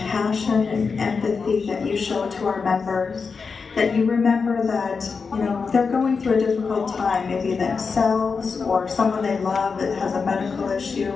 and empathy that you show to our members. That you remember that, you know, they're going through a difficult time, maybe themselves or someone they love that has a medical issue.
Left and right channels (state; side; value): quieter; right; 5.1 dB